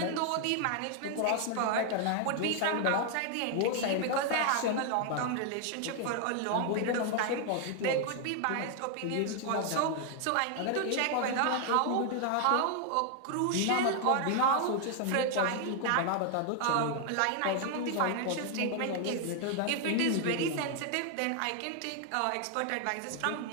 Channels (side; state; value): both; different; correlation 0.00